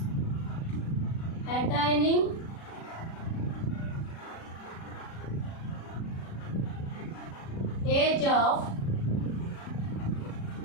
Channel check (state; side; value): late; right; 36 ms